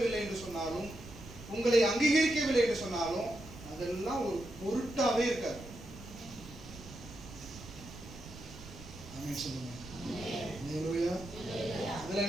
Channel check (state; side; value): noise; right; rumble, 15 dB below the sound